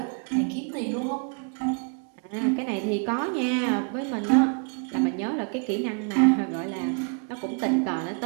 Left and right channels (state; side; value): quieter; left; 39.4 dB